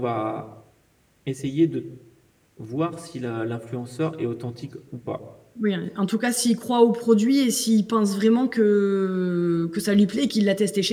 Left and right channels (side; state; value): both; identical; correlation 1.00